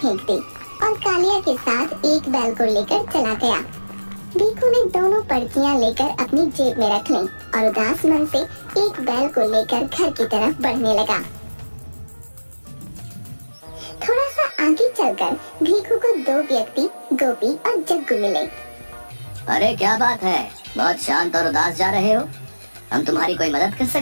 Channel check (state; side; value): inverted; both; correlation -1.00